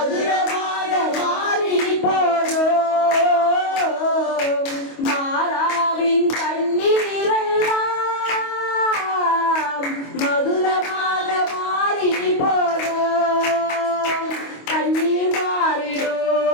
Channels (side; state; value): right; late; 25 ms